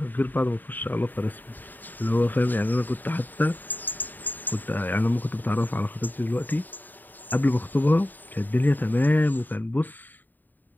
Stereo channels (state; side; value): late; right; 0.088 ms